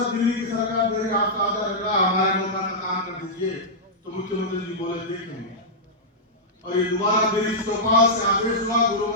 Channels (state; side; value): normal; both; correlation -0.10